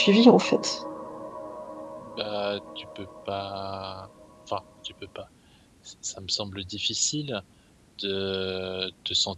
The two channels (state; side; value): identical; both; correlation 1.00